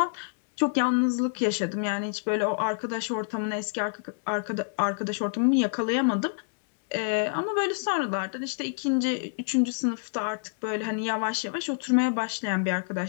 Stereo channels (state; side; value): silent; right; digital silence